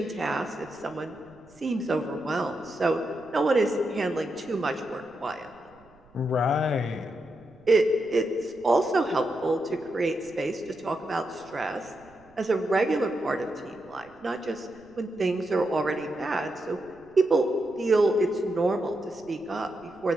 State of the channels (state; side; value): noise; right; rumble, 29 dB below the sound